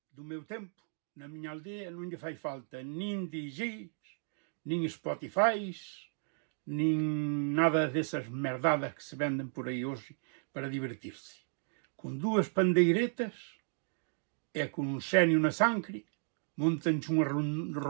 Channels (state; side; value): silent; left; digital silence